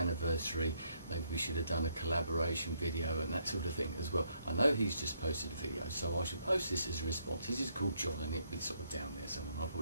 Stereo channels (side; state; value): both; inverted; correlation -0.72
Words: maybe we should have done a collaboration video and that sort of thing as well. I know he's just posted a video, so I should post this as a response. This is called John, and it'll be sort of down there somewhere. I'll